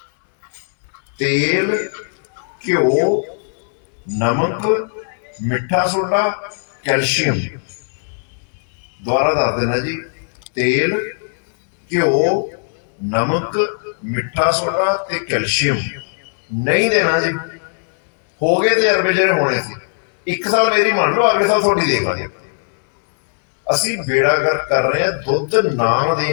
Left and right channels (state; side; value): silent; right; digital silence